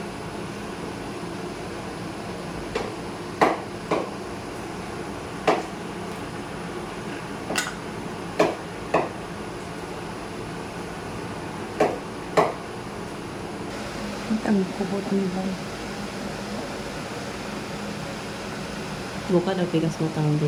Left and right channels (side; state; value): both; identical; correlation 1.00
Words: Ang kubot ni ba? Buka daw pikas mo tanong di